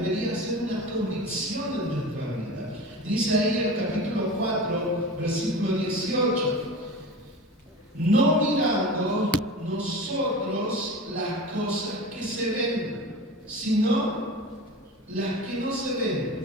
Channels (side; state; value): both; normal; correlation 0.32